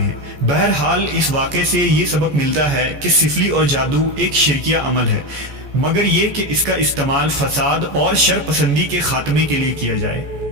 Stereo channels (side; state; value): left; late; 14 ms